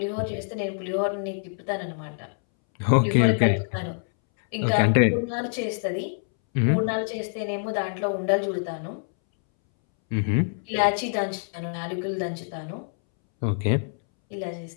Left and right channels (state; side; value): silent; right; 61 dB below the other